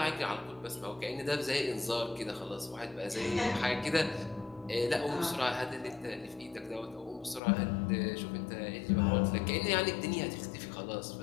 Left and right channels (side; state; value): right; drops out; at 7.4 s